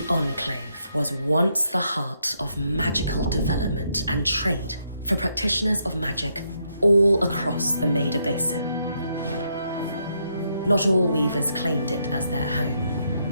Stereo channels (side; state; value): both; inverted; correlation -0.77